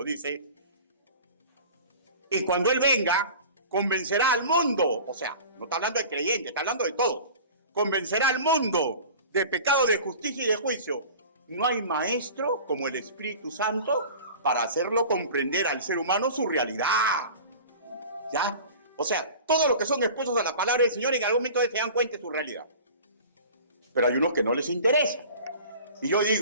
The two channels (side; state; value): both; inverted; correlation -0.40